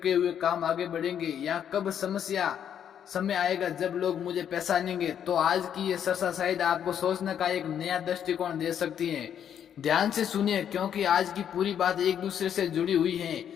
हुए काम आगे बढ़ेंगे, या कब समय आएगा जब लोग मुझे पहचानेंगे, तो आज की ये चर्चा शायद आपको सोचने का एक नया दृष्टिकोण दे सकती है। ध्यान से सुनिए, क्योंकि आज की पूरी बात एक दूसरे से जुड़ी हुई है।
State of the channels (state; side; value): quieter; right; 9.1 dB